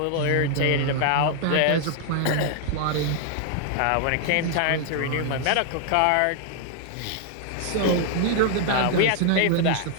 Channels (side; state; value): both; different; correlation 0.00